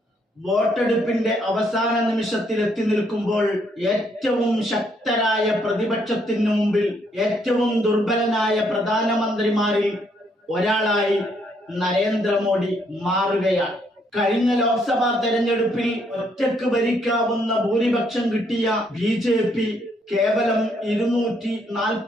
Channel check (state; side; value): normal; both; correlation 0.71